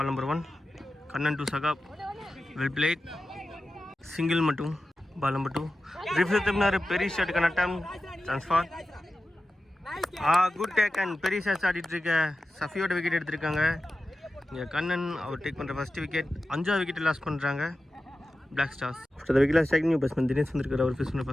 number 1. Kannan to Saqib. Well played. Single மட்டும். Ball number 2. ரிஃப்ளெக்ட் பெரிய ஷாட் கனட்டம். ட்ரான்ஸ்ஃபார். குட் டேக் அண்ட் பெரிய ஷாட்ஸ் ஆடிட்டு இருக்க சஃபியோட விக்கெட் எடுத்திருக்காங்க. இங்கே கண்ணன் அவர் டேக் பண்ணுற ஃபர்ஸ்ட் விக்கெட். 5வது விக்கெட் லாஸ் பண்ணுறாங்க black stars. After the wicket strike new batsman Dinesh வந்திருக்காரு. அவர் ஃபேஸ் பண்ண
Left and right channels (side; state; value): both; normal; correlation 0.94